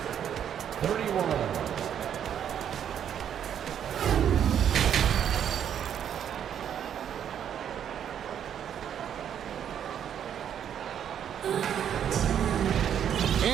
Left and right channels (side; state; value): left; quieter; 9.1 dB